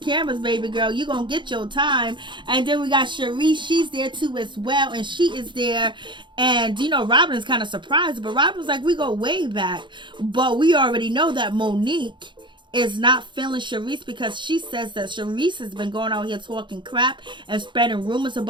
baby girl. You're going to get your time. And then we got Sharice. She's there too as well. And she is there. And, you know, Robin is kind of surprised. But Robin's like, we go way back. But we already know that Monique is not feeling Sharice because she says that Sharice has been going out here talking crap and spreading rumors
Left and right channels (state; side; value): late; left; 0.23 ms